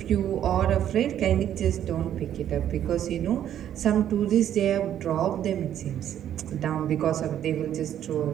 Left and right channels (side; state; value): left; quieter; 10.6 dB